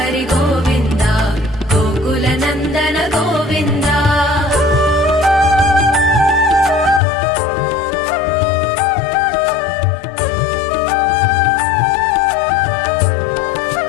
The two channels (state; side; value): drops out; right; at 7.0 s